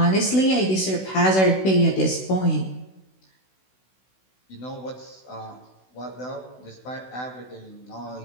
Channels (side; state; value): right; late; 16 ms